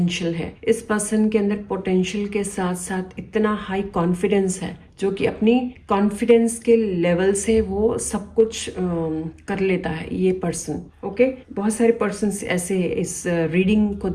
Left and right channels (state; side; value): identical; both; correlation 1.00